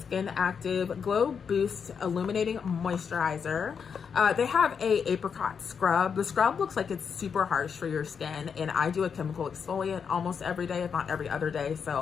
Active Glow Boost Illuminating Moisturizer. They have a apricot scrub. The scrub looks like it's super harsh for your skin, and I do a chemical exfoliant almost every day, if not every other day, so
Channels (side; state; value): right; quieter; 6.5 dB